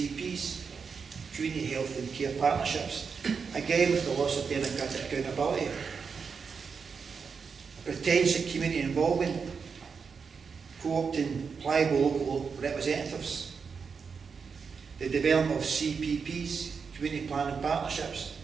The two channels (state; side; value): quieter; left; 5.7 dB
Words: community health and care partnerships, again with the loss of democratic accountability. A pretense at community involvement, co-opting pliable local representatives. The development of CPPs, community planning partnerships,